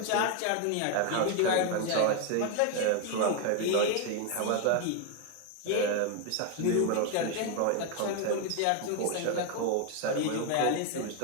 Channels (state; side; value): different; both; correlation 0.01